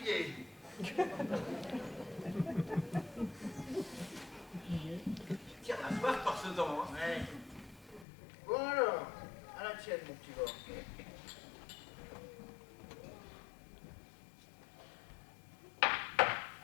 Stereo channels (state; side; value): drops out; right; at 8.1 s